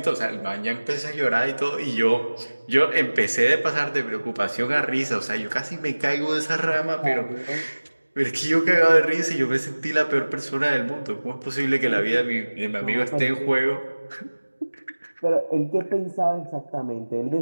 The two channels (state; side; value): inverted; both; correlation -1.00